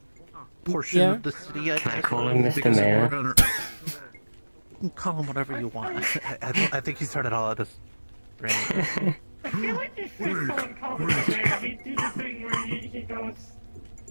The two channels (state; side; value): inverted; both; correlation -1.00